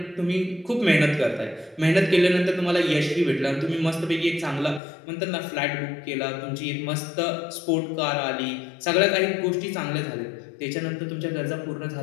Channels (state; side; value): drops out; right; at 4.8 s